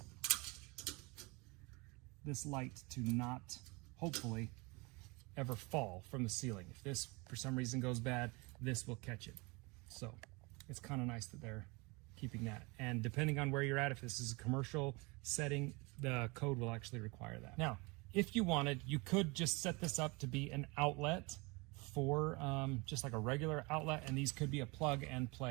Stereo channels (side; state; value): left; quieter; 27.0 dB